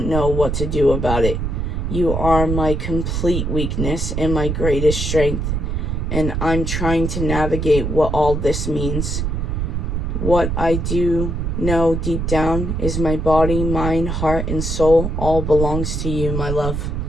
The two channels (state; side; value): noise; right; rumble, 1 dB below the sound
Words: know what to do about it. You are my complete weakness and my greatest strength, and I'm trying to navigate what all this means. What I do know deep down is my body, mind, heart, and soul all belongs to you, my love.